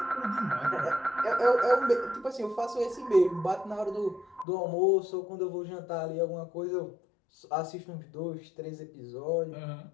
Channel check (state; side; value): drops out; right; at 4.5 s